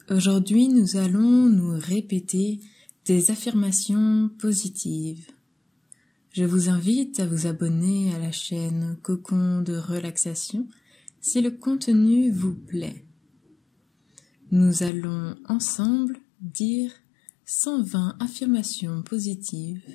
aujourd'hui nous allons nous répéter des affirmations positives. Je vous invite à vous abonner à la chaîne Cocon de relaxation si le contenu vous plaît. Nous allons ensemble dire 120 affirmations positives.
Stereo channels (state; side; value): drops out; right; at 14.9 s